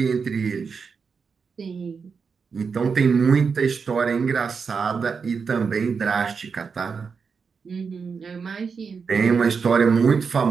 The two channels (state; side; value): quieter; left; 5.5 dB